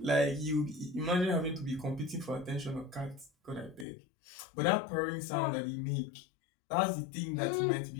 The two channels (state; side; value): drops out; right; at 3.9 s